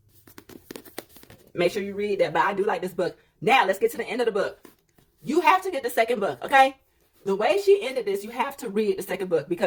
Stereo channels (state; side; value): identical; both; correlation 1.00